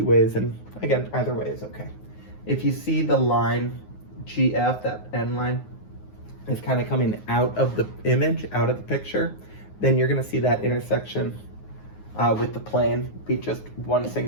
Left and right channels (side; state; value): right; late; 9.5 ms